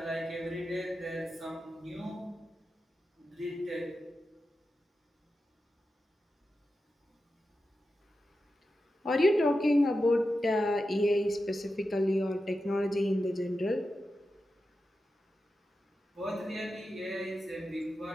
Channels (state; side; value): normal; both; correlation 0.91